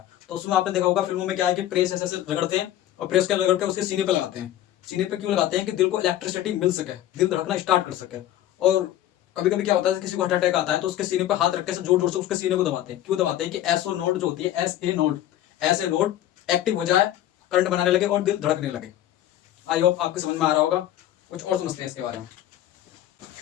तो उसमें आपने देखा होगा फिल्मों में क्या है कि प्रेस ऐसे ऐसे रगड़ते हैं, और प्रेस के रगड़ के उसके सीने पे लगाते हैं। सीने पे क्यों लगाते हैं? कि दिल को इलेक्ट्रिसिटी मिल सके, दिल धड़कना स्टार्ट कर सके। और कभी कभी क्या होता है, किसी को हार्ट अटैक आता है तो उसके सीने पे हाथ रख के जोर जोर से उसके सीने को दबाते हैं। क्यों दबाते हैं? कि एसओ नोड जो होती है, एस ए नोड, ऐसे नोड एक्टिव हो जाए, करंट बनाने लगे और दिल धड़कने लगे। आई होप आपके समझ में आ रहा होगा। कुछ और समझते हैं इसके बारे में।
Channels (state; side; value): quieter; right; 12.8 dB